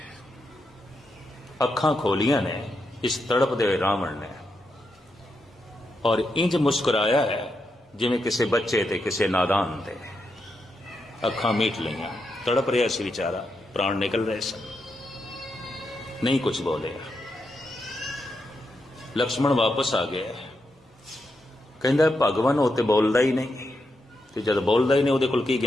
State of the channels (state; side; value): normal; both; correlation 0.84